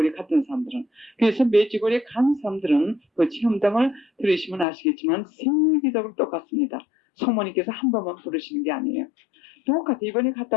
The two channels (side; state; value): right; drops out; at 4.7 s